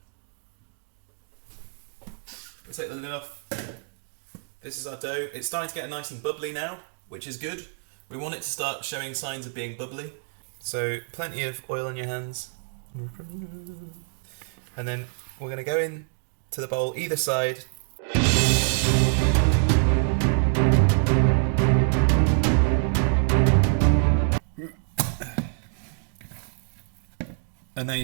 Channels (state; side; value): silent; left; digital silence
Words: We take the lid off. This is our dough. It's starting to get nice and bubbly now, which is good. We want it to start showing signs of being bubbly. So plenty of oil on your hands. And then we're going to go in to the bowl either side. And then